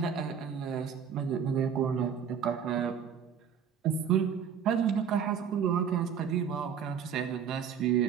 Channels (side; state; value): left; quieter; 7.5 dB